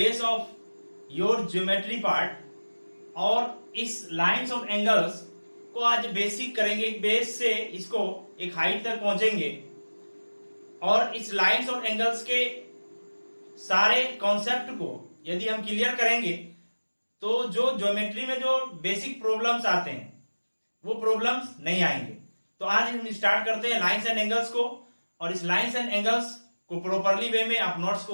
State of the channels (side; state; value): both; inverted; correlation -1.00